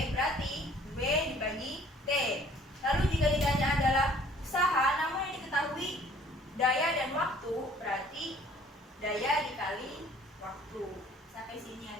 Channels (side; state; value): both; normal; correlation 0.55